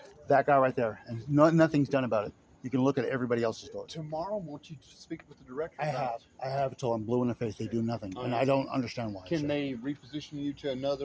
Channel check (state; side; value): identical; both; correlation 1.00